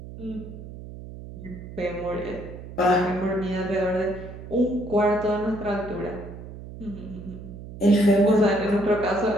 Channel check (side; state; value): right; noise; hum, 13 dB below the sound